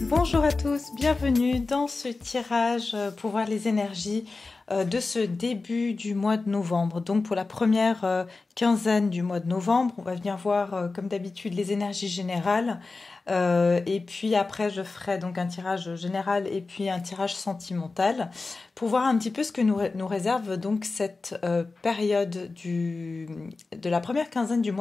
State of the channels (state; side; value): quieter; right; 3.7 dB